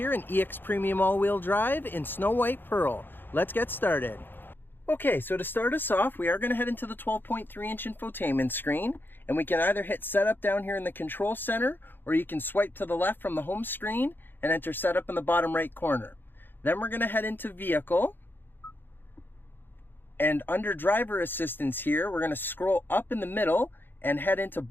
an EX Premium all-wheel drive in Snow White Pearl. Let's get started. Okay, so to start us off, we are going to head into the 12.3-inch infotainment screen, and we can either hit Setup down here in the control center, or you can swipe to the left from the home screen and enter Setup in the bottom right corner. Then we're going to head into Vehicle. And under driver assistance here, we're going to scroll up in the middle and head into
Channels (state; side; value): late; right; 0.097 ms